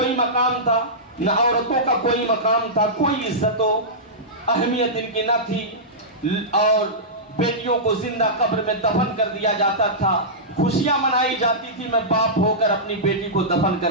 مقام تھا، نہ عورتوں کا کوئی مقام تھا، کوئی عزت و اہمیت ان کی نہ تھی، اور بیٹیوں کو زندہ قبر میں دفن کر دیا جاتا تھا۔ خوشیاں منائی جاتی تھی، میں باپ ہو کر اپنی بیٹی کو دفن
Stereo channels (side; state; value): both; normal; correlation -0.15